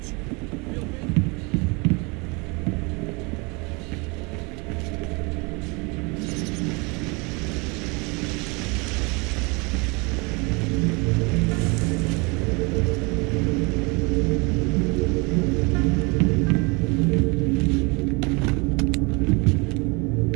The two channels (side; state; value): left; quieter; 28.7 dB